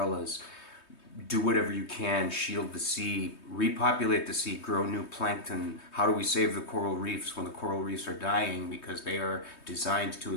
do whatever you can, shield the sea, repopulate the sea, grow new plankton. How do we save the coral reefs when the coral reefs are dying because they are designed to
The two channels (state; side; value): late; right; 3.2 ms